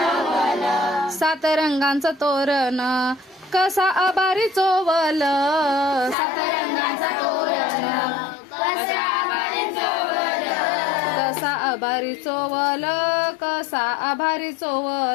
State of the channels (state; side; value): drops out; right; at 6.2 s